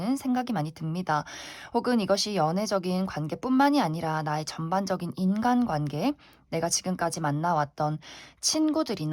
생각이 많이 듭니다. 혹은 이것이 연애적인 관계뿐만이 아니라 나의 전반적인 인간관계, 내가 지금까지 만나왔던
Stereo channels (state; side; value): identical; both; correlation 1.00